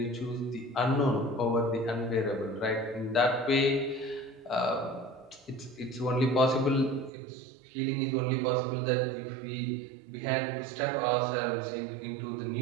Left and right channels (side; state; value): left; drops out; at 7.1 s